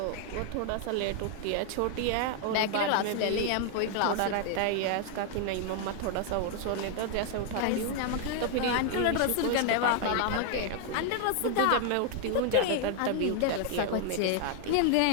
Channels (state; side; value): different; both; correlation 0.00